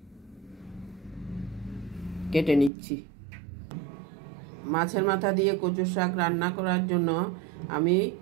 কেটে নিচ্ছি। মাছের মাথা দিয়ে কচু শাক রান্না করার জন্য আমি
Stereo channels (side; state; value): left; drops out; at 2.7 s